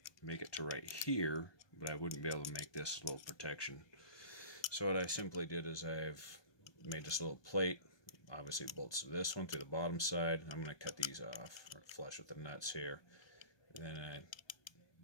make it to right here, but I wouldn't be able to make this little protection. So what I simply did is I've made this little plate. Obviously it bolts to this one through the bottom side. I'm going to cut these off, or flush with the nuts here. And then I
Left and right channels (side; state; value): right; late; 1.2 ms